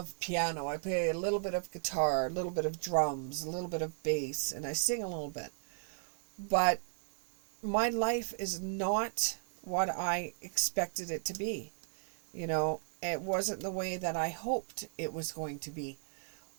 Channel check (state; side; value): silent; left; 54 dB below the other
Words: piano. I play a little bit of guitar, a little bit of drums, a little bit of bass, and I sing a little bit. But my life is not what I expected it to be. You know, it wasn't the way that I hoped it was going to be.